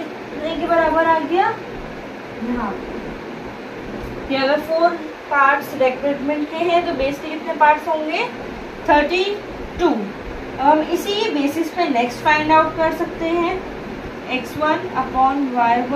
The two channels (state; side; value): identical; both; correlation 1.00